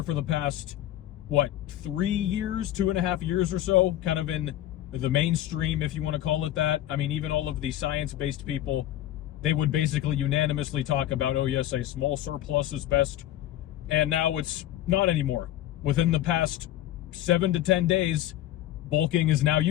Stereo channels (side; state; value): right; quieter; 13.1 dB